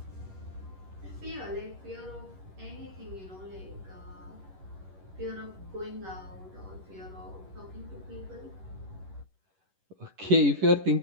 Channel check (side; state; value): left; late; 11 ms